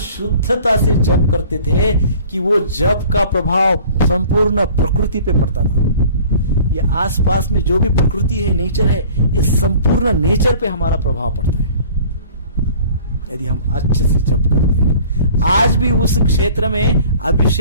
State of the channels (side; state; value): both; inverted; correlation -0.48